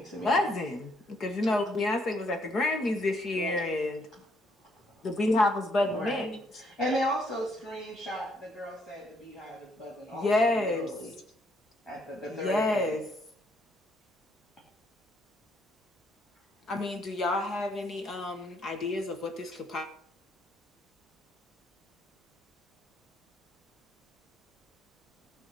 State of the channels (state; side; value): normal; both; correlation 0.71